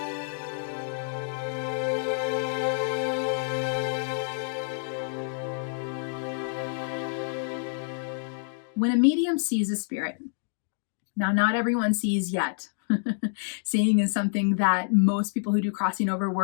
When a medium sees a spirit, now not everyone sees yet. Seeing is something that most people who do crossing over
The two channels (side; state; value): right; silent; digital silence